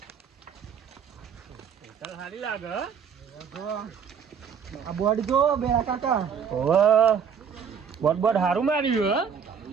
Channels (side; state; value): left; quieter; 7.1 dB